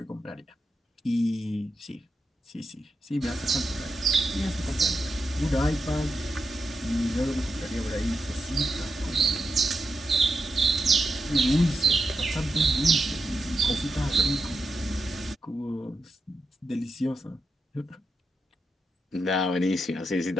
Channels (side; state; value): both; normal; correlation 0.86